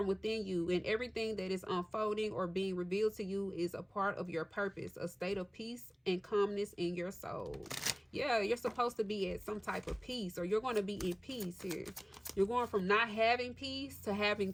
within you, and everything that is unfolding or being revealed to you is a part of your purpose, a state of peace and calmness in your soul. Yeah, you're supposed to be at some type of peace, or you're going to be in peace here. You're going from not having peace to having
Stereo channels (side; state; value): both; identical; correlation 1.00